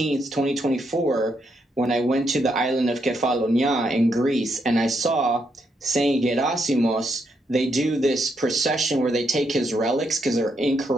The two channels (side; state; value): both; normal; correlation 0.78